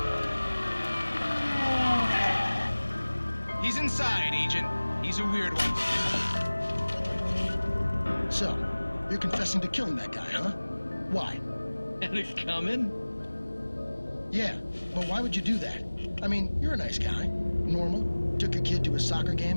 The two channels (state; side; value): inverted; both; correlation -1.00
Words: He's inside, Agent. He's a weird one. So, you're confessing to killing that guy, huh? Why? And it coming? Yeah, but why would you do that? I mean, you're a nice guy. Normal. Took a kid to a soccer